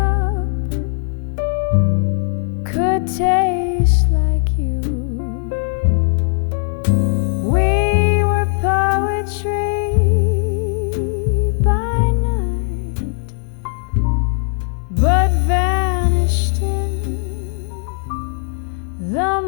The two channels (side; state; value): right; silent; digital silence